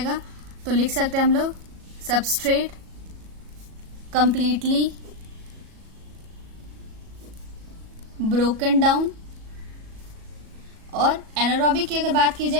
तो लिख सकते हैं हम लोग सबस्ट्रेट कंप्लीटली ब्रोकन डाउन। और एनारोबिक की अगर बात की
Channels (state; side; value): late; left; 37 ms